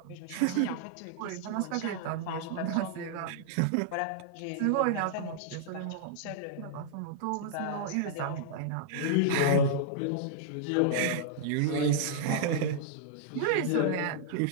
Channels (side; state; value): both; different; correlation -0.01